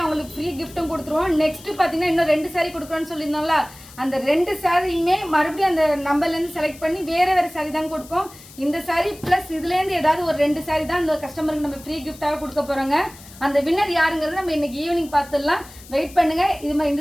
அவங்களுக்கு ஃப்ரீ கிஃப்ட்டும் கொடுத்துருவோம். நெக்ஸ்ட் பாத்தீங்கன்னா இன்னும் 2 சாரி கொடுக்குறோம்னு சொல்லியிருந்தோம்ல, அந்த 2 சாரியுமே மறுபடியும் அந்த நம்பர்ல இருந்து செலக்ட் பண்ணி வேற சாரி தான் கொடுப்போம். இந்த சாரி பிளஸ் இதுல இருந்து ஏதாவது ஒரு 2 சாரி தான் அந்த கஸ்டமருக்கு நம்ம ஃப்ரீ கிஃப்டாக கொடுக்க போறோங்க. அந்த வின்னர் யாருங்கிறத நம்ம இன்னைக்கு ஈவினிங் பார்த்துடலாம். வெயிட் பண்ணுங்க. இது மாதிரி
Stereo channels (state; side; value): noise; left; hiss, 20 dB below the sound